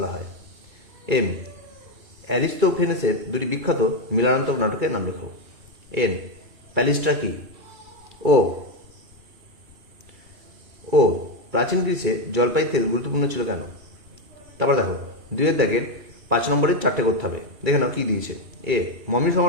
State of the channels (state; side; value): late; left; 2.3 ms